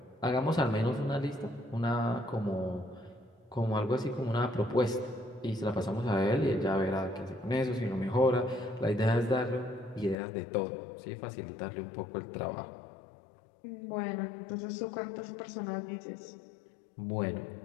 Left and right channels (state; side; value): drops out; right; at 10.2 s